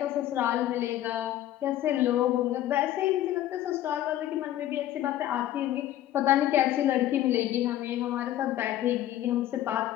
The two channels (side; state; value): right; quieter; 13.0 dB